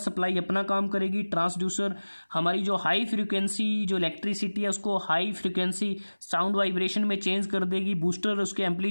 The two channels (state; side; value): inverted; both; correlation -1.00